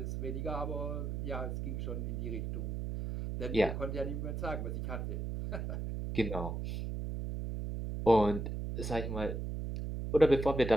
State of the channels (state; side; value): noise; right; hum, 3 dB below the sound